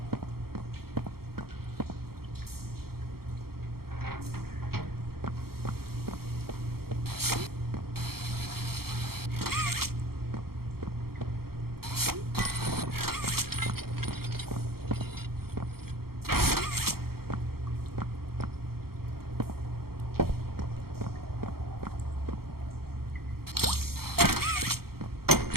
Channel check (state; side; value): late; left; 0.94 ms